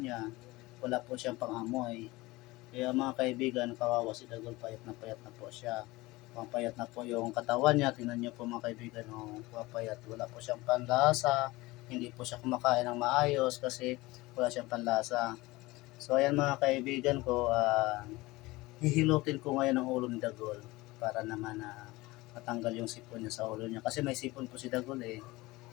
Wala po siyang pangamoy. Kaya mga kaibigan, kawawa si Dagol, payat na po siya. Papayat na po yung katawan niya. Tingnan niyo po mga kaibigan, oh, papayat. Wala po siyang panlasa. Hindi po siya kumakain ng maayos kasi wala siyang panlasa. So ayan mga kaibigan ko, hihilutin ko ngayon ang ulo ni Dagol para naman matanggal yung sipon niya sa ulo niya. Kasi may sipon po si Dagol eh.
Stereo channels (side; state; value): right; quieter; 20.9 dB